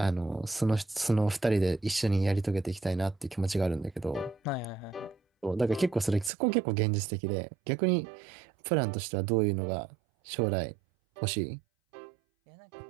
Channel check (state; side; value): drops out; left; at 6.3 s